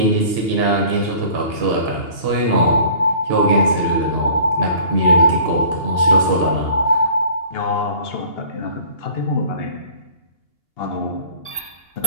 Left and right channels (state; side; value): late; right; 2.8 ms